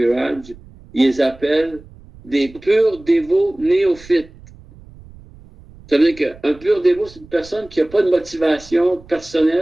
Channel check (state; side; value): noise; right; rumble, 22 dB below the sound